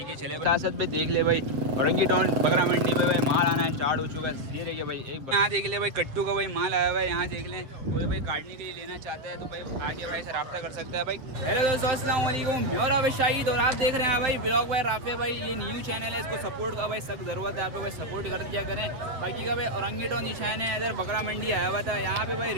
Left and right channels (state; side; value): late; left; 7.5 ms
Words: है चले साथ साथ भाई देख ले भाई औरंगी टाउन बकरा मंडी में भाई माल आना स्टार्ट हो चुका है। ये देखिए भाई एक यहाँ देख ले भाई कट्टू का भाई माल आया हुआ है। यहाँ देख लें कोई भाई काटने के लिए लेना चाहता है तो भाई आके भाई से रब्ता कर सकता है भाई। हेलो दोस्तों अस्सलाम वालेकुम, मैं और भाई शाहिद और आप देख रहे हैं भाई ब्लॉग भाई राफे भाई। ये न्यू चैनल है, इसको सपोर्ट का भाई सख्त ज़रूरत है, आप लोग भाई सपोर्ट कर दिया करें। बाकी का भाई औरंगी टाउन निशान है, इधर बकरा मंडी आया हुआ था। यहाँ पे भाई